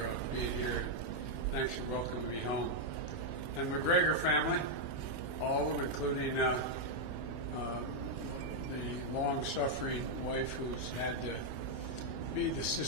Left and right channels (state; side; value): late; right; 1.1 ms